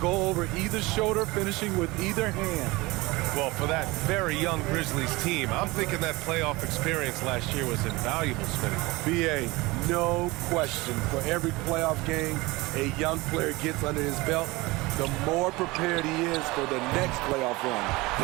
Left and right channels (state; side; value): quieter; left; 22.2 dB